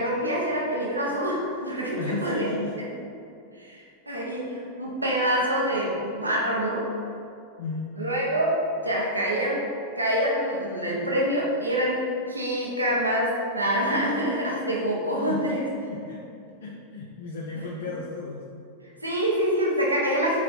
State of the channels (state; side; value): normal; both; correlation -0.17